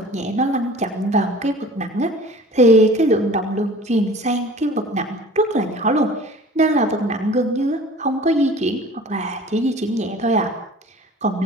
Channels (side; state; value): both; normal; correlation 0.44